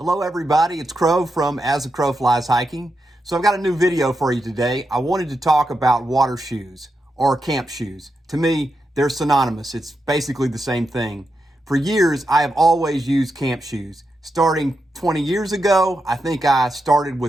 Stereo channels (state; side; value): normal; both; correlation 0.86